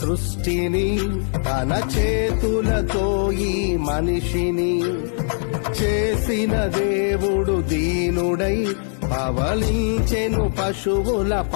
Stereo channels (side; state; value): right; silent; 60 dB below the other